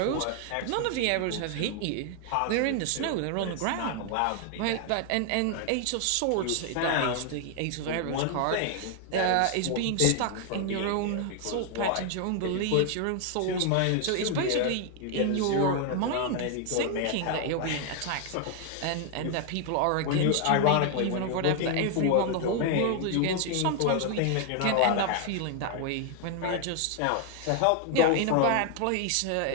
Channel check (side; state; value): both; different; correlation 0.00